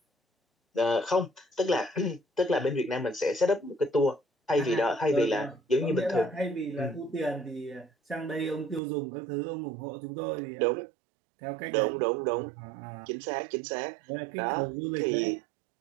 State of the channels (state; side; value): drops out; left; at 8.8 s